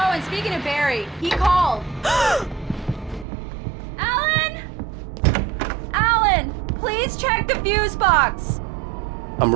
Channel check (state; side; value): drops out; left; at 3.2 s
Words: and speaking of Barry, he called. Alan! Alan, please check the fuse box. I'm